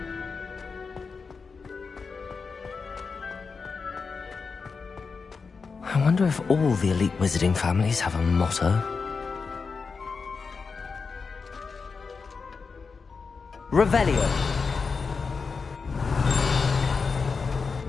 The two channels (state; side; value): quieter; right; 4.9 dB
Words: I wonder if all the elite wizarding families have a motto. Revelio.